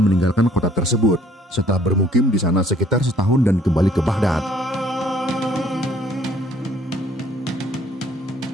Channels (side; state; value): both; normal; correlation 0.60